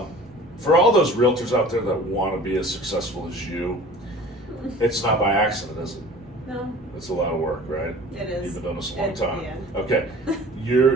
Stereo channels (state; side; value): normal; both; correlation 0.43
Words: all those realtors out there that want to be as successful as you, it's not by accident, is it? No, That's a lot of work, right? it is. You've been doing this a long time. Yeah. Okay.